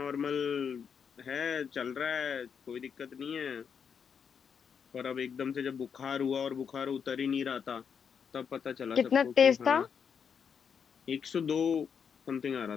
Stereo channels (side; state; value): right; quieter; 7.0 dB